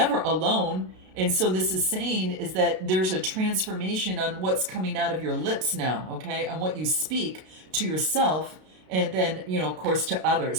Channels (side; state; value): left; late; 32 ms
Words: alone. And so this is saying is that there's a transformation on what's coming out of your lips now, okay? On what you speak to yourself and then, of course, to